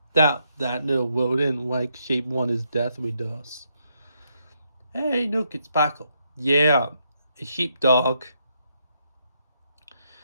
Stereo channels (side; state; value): both; inverted; correlation -0.78